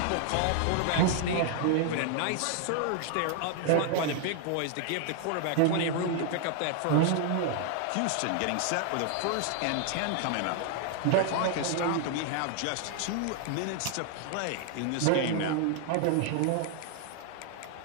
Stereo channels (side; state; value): both; different; correlation 0.00